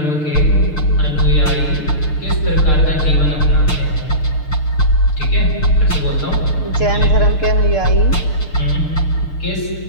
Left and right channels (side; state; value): right; late; 6.6 ms